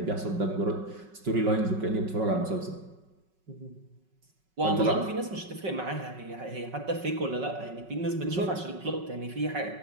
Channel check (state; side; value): late; left; 5.4 ms